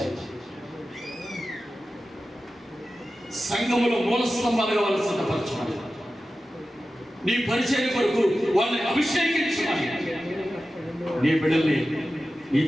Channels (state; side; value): normal; both; correlation 0.94